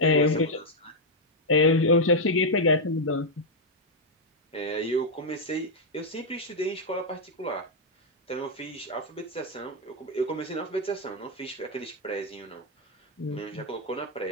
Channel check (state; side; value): normal; both; correlation -0.01